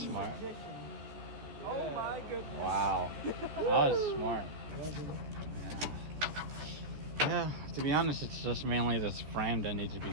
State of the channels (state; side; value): late; left; 14 ms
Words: smart. Oh my goodness. Wow. That was smart. Yeah, to be honest, it's just mainly this frame that needs to be